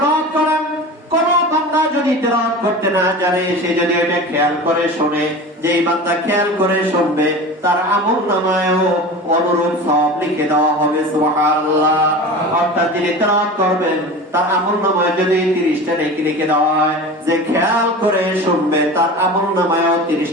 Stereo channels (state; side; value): normal; both; correlation 0.33